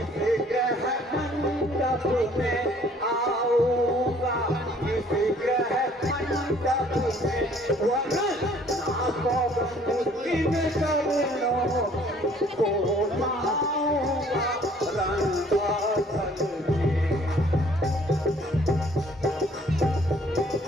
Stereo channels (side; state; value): both; normal; correlation 0.58